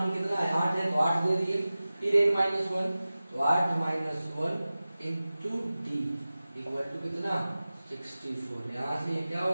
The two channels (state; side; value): inverted; both; correlation -0.96